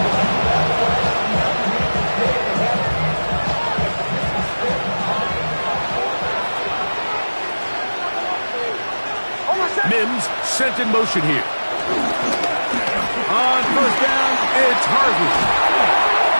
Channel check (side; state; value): both; inverted; correlation -1.00